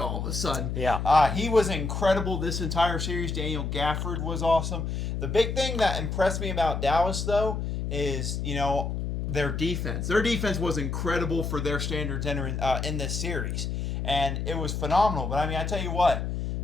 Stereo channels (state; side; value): noise; left; hum, 3 dB below the sound